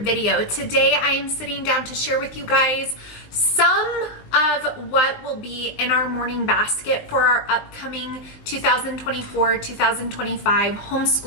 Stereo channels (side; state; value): right; late; 19 ms